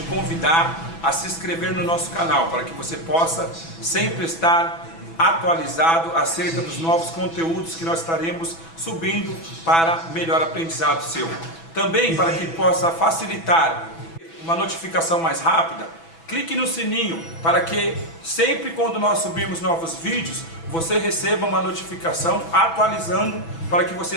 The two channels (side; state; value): right; late; 6.1 ms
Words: convidar a se inscrever no nosso canal para que você possa sempre estar atualizado acerca dos novos conteúdos que nós estaremos subindo para melhor aprendizado seu. Também para que possa facilitar uma notificação mais rápida, clique no sininho para que sempre quando nós subirmos novos vídeos, você receba uma notificação atualizando para que